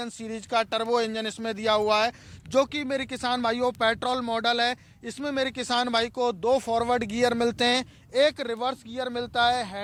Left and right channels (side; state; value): both; identical; correlation 1.00